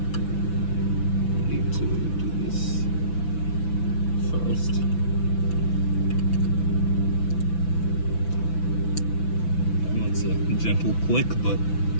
need to do this first. That's a gentle click, but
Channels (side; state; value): right; late; 6.0 ms